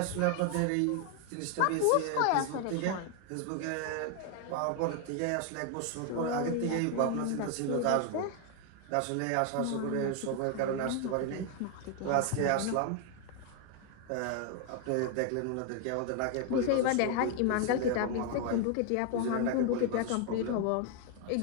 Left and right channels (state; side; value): different; both; correlation 0.01